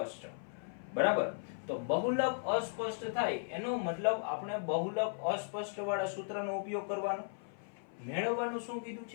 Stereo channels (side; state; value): right; silent; 53 dB below the other